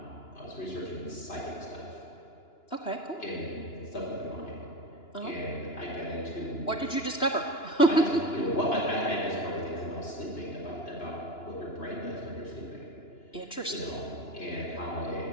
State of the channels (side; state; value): right; late; 2.9 ms